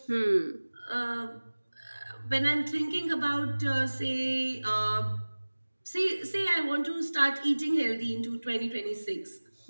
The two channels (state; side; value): inverted; both; correlation -1.00